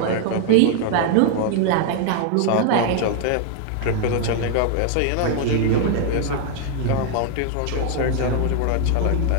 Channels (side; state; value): both; different; correlation 0.00